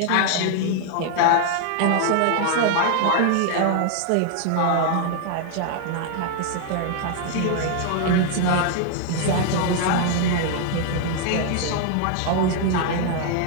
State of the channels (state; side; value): different; both; correlation 0.00